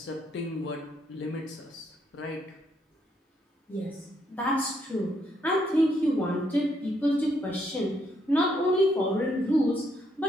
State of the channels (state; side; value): normal; both; correlation 0.74